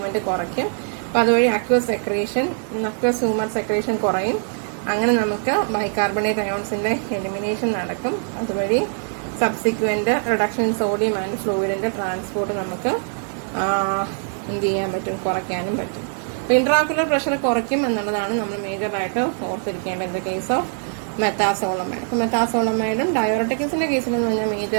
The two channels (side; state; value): left; silent; 55 dB below the other